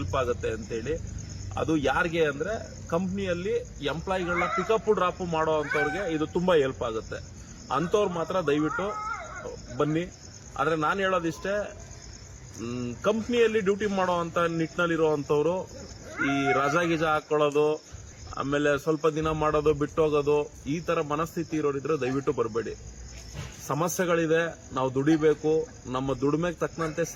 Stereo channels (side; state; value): both; identical; correlation 1.00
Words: ಆಗುತ್ತೆ ಅಂತೇಳಿ. ಅದು ಯಾರಿಗೆ ಅಂದ್ರೆ ಕಂಪ್ನಿಯಲ್ಲಿ ಎಂಪ್ಲಾಯಿಗಳನ್ನ ಪಿಕಪ್ ಡ್ರಾಪ್ ಮಾಡೋ ಅಂತವ್ರಿಗೆ ಇದು ತುಂಬಾ ಹೆಲ್ಪ್ ಆಗುತ್ತೆ. ಅಂತವ್ರು ಮಾತ್ರ ದಯವಿಟ್ಟು ಬನ್ನಿ. ಆದ್ರೆ ನಾನು ಹೇಳೋದಿಷ್ಟೇ, ಕಂಪ್ನಿಯಲ್ಲಿ ಡ್ಯೂಟಿ ಮಾಡೋ ಅಂತ ನಿಟ್ಟಿನಲ್ಲಿರುವಂತವ್ರು ಈ ರಜಾ ಗಿಜಾ ಹಾಕೊಳ್ಳೋದು, ಆಮೇಲೆ ಸ್ವಲ್ಪ ದಿನ ಮಾಡೋದು, ಬಿಟ್ಟೋಗೋದು, ಈ ತರ ಮನಸ್ಥಿತಿ ಇರೋರಿದ್ರೆ ದಯವಿಟ್ಟು ಬರಬೇಡಿ. ಸಮಸ್ಯೆಗಳಿದೆ, ನಾವು ದುಡಿಬೇಕು, ನಮ್ಮ ದುಡಿಮೆಗೆ ತಕ್ಕಂತೆ